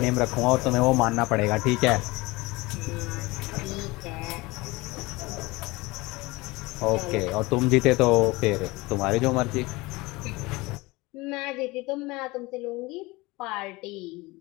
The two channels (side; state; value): right; quieter; 22.5 dB